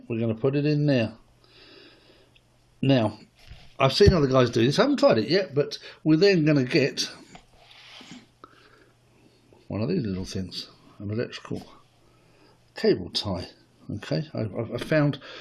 we're going to put it in there. Now, I've seen other guys do this. I haven't tried it yet, but we're then going to get one of these little things, an electrical cable tie. Okay, I found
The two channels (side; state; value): both; identical; correlation 1.00